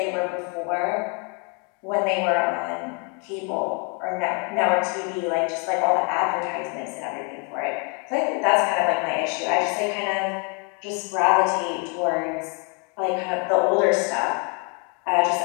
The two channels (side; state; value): right; quieter; 35.5 dB